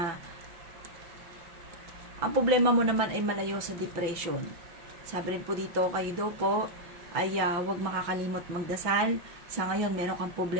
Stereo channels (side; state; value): left; late; 5.9 ms